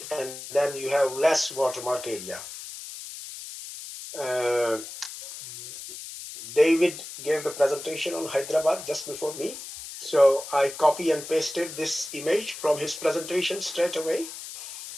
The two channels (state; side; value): noise; left; hiss, 11 dB below the sound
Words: and then you have less watermark area. David gave the presentation on Hyderabad just before me. So I copy and pasted this image from his presentation straight away.